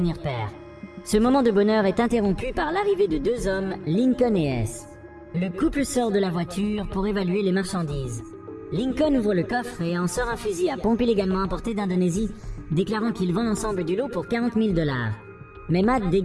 père. Ce moment de bonheur est interrompu par l'arrivée de 2 hommes, Lincoln et S. Le couple sort de la voiture pour évaluer les marchandises. Lincoln ouvre le coffre et en sort un fusil à pompe illégalement importé d'Indonésie, déclarant qu'il vend l'ensemble du lot pour 40 000 $. Mais Matt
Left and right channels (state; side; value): identical; both; correlation 1.00